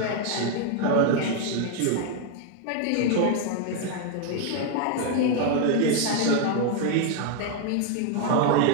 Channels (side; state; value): both; different; correlation 0.01